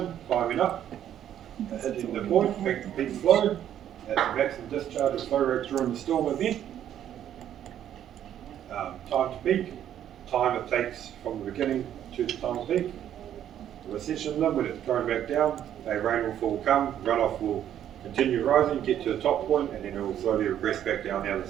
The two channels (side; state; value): left; quieter; 10.6 dB